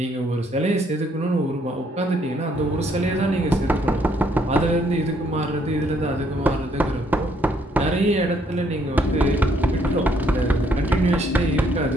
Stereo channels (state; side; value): normal; both; correlation 0.69